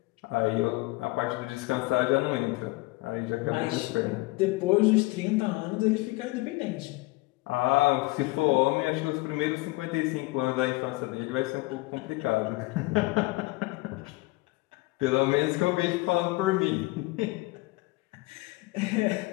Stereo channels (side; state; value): right; quieter; 22.1 dB